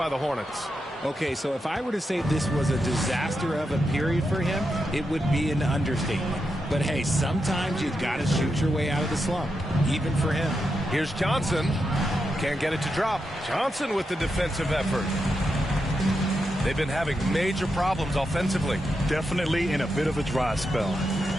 the Hornets. Okay, so if I were to say this was a disaster of a period for him, it would be an understatement. But hey, sometimes you've got to shoot your way out of the slump, even for him. Here's Johnson. Can't get it to drop. Johnson with the defensive effort. They've been having major problems offensively. Definitely in a bit of a dry spell.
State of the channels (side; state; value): both; normal; correlation 0.86